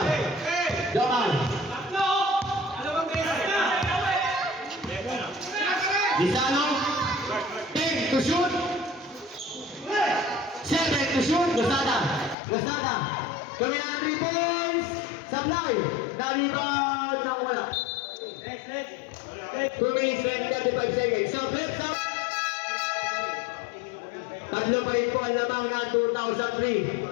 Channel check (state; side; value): drops out; right; at 12.4 s